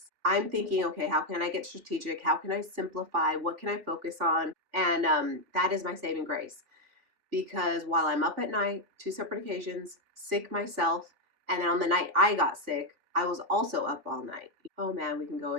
I'm thinking, okay, how can I get strategic? How can I simplify? What can I focus on? And that is my saving grace. Because while I'm up at night, 2 separate occasions, sick myself, and then on the night I got sick, I was also up all night. Oh man, we can go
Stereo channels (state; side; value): late; left; 3.5 ms